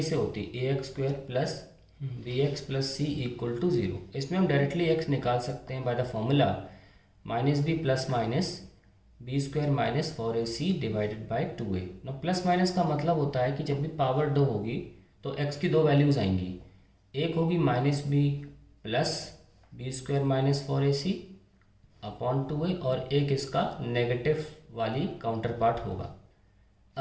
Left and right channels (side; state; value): both; identical; correlation 1.00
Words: से होती है, a x square plus b x plus c equal to 0। इसमें हम डायरेक्टली एक्स निकाल सकते हैं by the formula minus b plus minus b square minus 4ac divided by 2a। ना प्लस माइनस का मतलब होता है कि जब भी पावर 2 होगी तो x की दो वैल्यूज़ आएंगी। एक होगी minus b plus b square minus 4ac upon 2a, और एक इसका नेगेटिव वाली काउंटर पार्ट होगा।